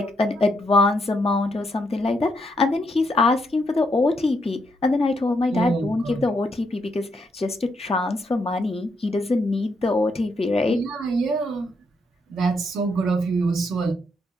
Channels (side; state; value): both; normal; correlation 0.77